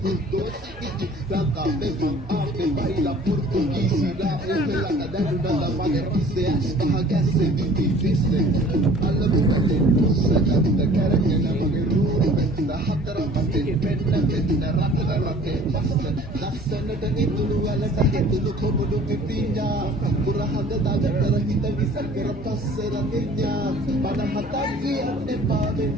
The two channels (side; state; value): both; normal; correlation 0.50